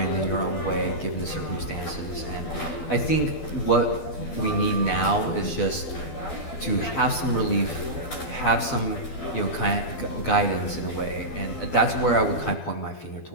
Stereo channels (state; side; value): late; right; 12 ms